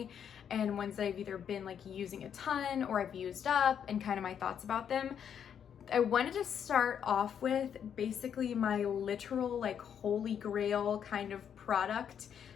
and ones that I've either been like using a ton or I've used up, and kind of my thoughts about them. I wanted to start off with basically my literal like holy grail kind of product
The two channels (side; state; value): right; quieter; 8.4 dB